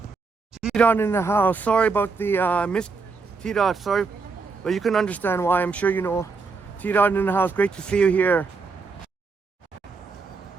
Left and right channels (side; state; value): left; quieter; 4.5 dB